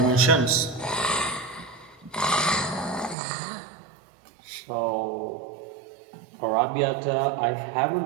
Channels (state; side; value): drops out; left; at 3.2 s